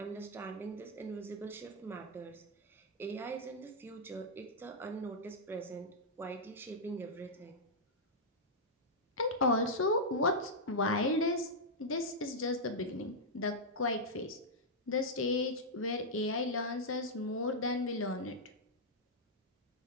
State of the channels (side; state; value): both; normal; correlation -0.07